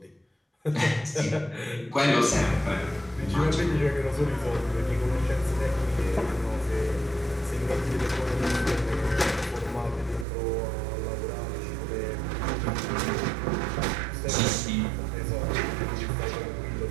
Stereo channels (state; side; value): drops out; left; at 10.2 s